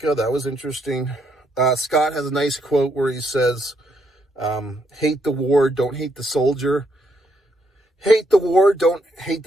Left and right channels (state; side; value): normal; both; correlation 0.75